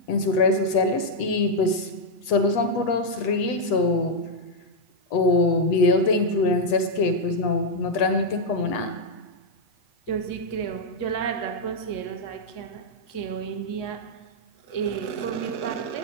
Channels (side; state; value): right; late; 8.2 ms